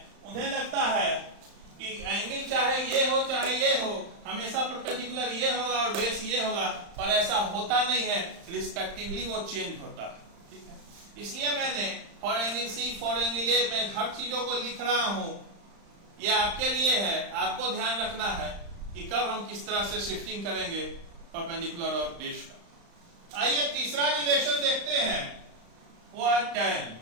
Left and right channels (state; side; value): late; left; 35 ms